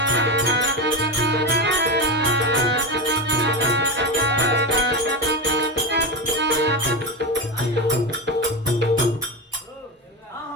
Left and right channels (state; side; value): normal; both; correlation 0.18